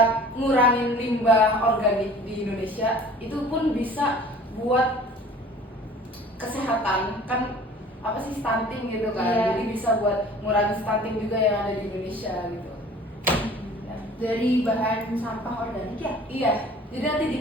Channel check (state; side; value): normal; both; correlation 0.47